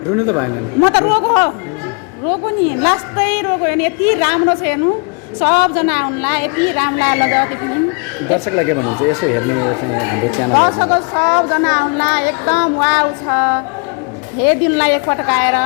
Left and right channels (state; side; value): quieter; right; 36.0 dB